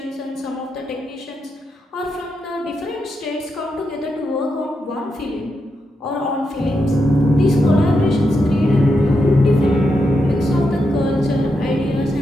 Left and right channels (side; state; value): both; normal; correlation 0.84